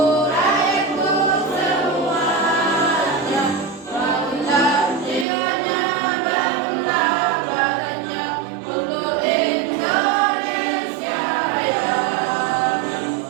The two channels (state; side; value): drops out; left; at 5.2 s